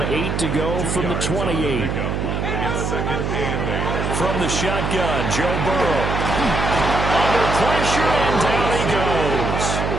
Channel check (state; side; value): noise; right; hum, 1 dB below the sound